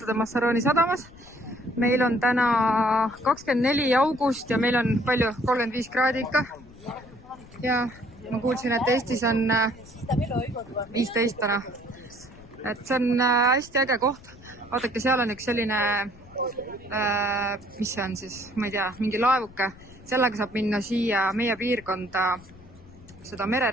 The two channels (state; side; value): noise; left; rumble, 22 dB below the sound